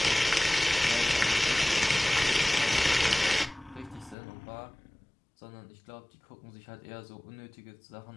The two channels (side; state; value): right; drops out; at 4.2 s